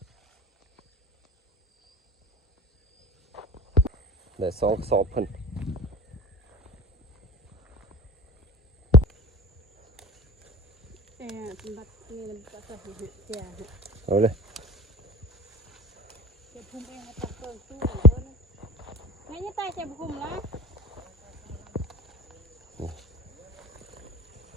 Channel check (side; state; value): both; normal; correlation 0.37